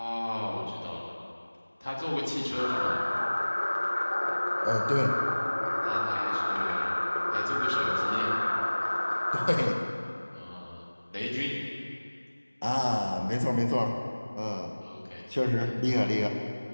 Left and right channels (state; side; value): inverted; both; correlation -1.00